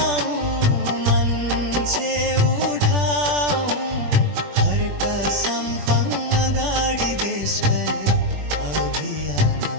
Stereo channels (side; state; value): left; late; 21 ms